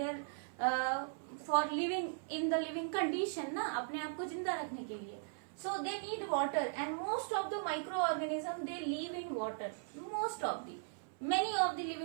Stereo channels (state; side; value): silent; left; 52 dB below the other